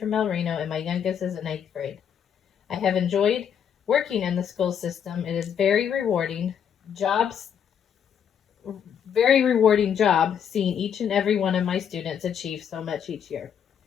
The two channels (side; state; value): right; quieter; 8.2 dB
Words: El Reno, and my youngest is in 8th grade. I have enjoyed working in the school system. It is very rewarding job seeing each and every one of my students achieve so much each year.